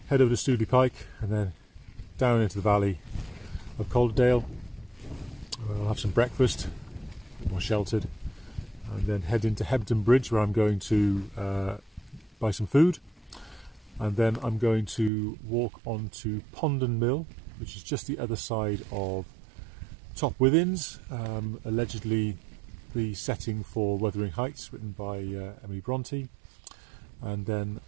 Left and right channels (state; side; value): drops out; left; at 15.1 s